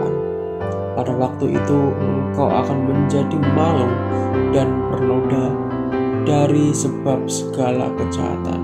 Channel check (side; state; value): both; identical; correlation 1.00